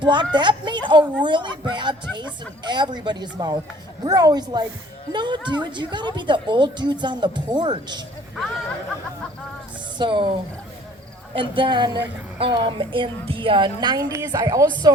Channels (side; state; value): both; normal; correlation 0.54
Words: that made a really bad taste in everybody's mouth. We're always like, no, dude, you gotta be the old dudes on the porch. So, and then in the 90s, I